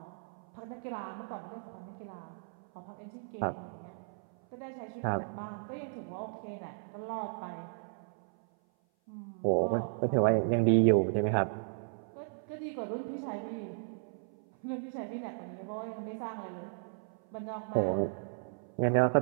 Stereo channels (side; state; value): left; silent; 54 dB below the other